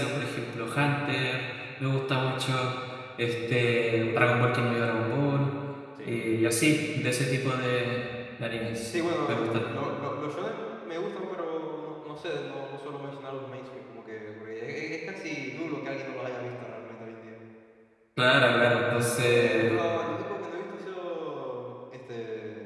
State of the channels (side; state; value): both; identical; correlation 1.00